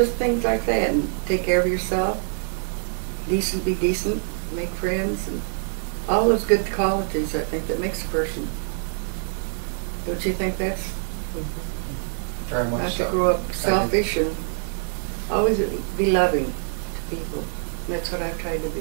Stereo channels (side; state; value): left; silent; 62 dB below the other